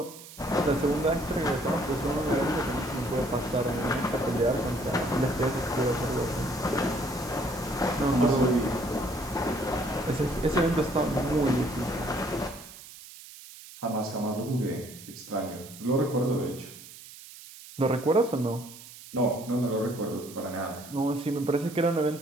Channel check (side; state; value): right; noise; hiss, 17 dB below the sound